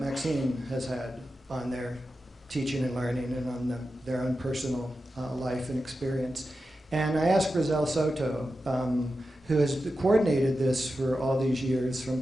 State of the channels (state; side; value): normal; both; correlation 0.91